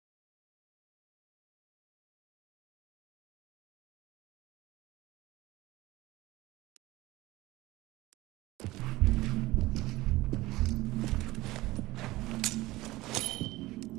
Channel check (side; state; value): left; quieter; 18.7 dB